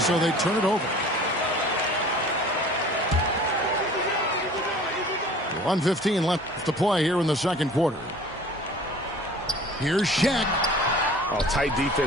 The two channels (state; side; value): normal; both; correlation 0.46